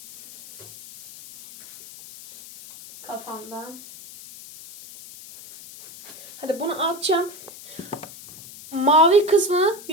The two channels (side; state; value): left; noise; hiss, 17 dB below the sound